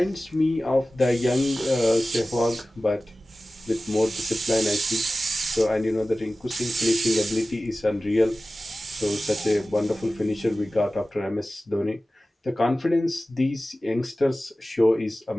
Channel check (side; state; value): both; normal; correlation 0.96